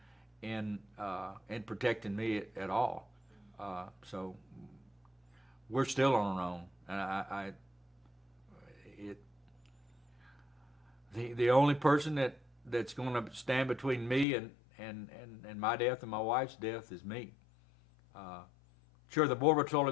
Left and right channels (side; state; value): right; drops out; at 14.2 s